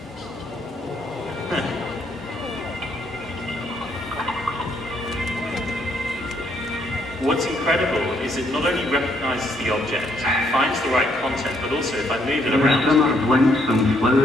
What's incredible is it not only recognizes the object, finds the right content, but also if I move it around. Summer blinks on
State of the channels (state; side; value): normal; both; correlation 0.71